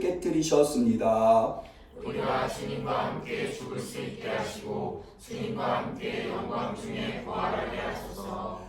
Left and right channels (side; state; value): both; identical; correlation 1.00